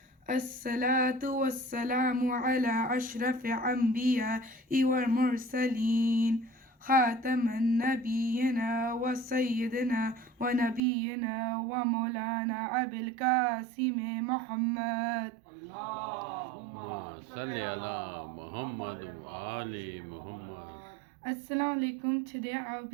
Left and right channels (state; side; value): drops out; left; at 10.8 s